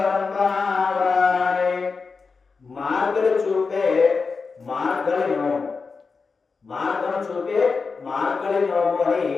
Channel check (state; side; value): quieter; right; 4.7 dB